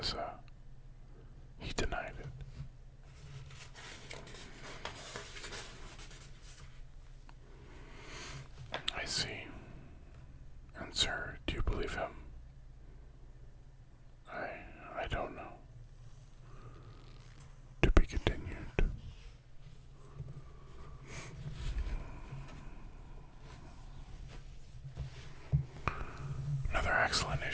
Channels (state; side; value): identical; both; correlation 1.00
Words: He denied it. I see. And sir, do you believe him? I don't know. To be continued. Another excellent